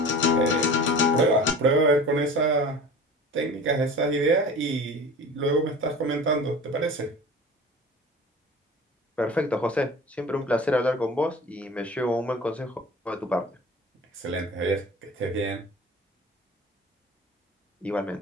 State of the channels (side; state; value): both; normal; correlation 0.39